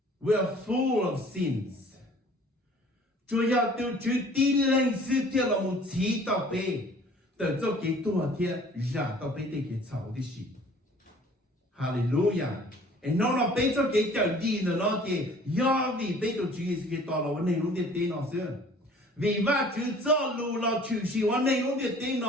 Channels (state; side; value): normal; both; correlation 0.51